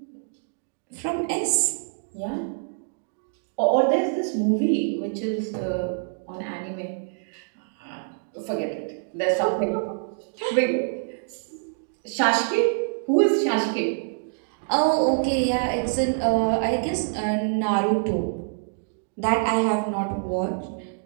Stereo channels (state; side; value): silent; left; digital silence